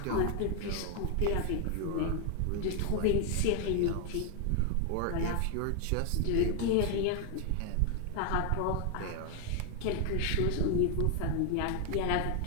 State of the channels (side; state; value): both; different; correlation 0.00